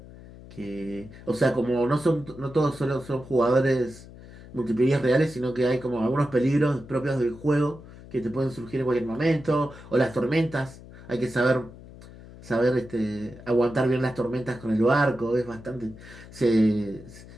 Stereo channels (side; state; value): left; noise; hum, 18 dB below the sound